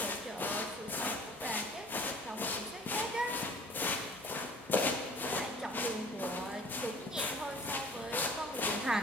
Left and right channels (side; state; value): both; normal; correlation 0.49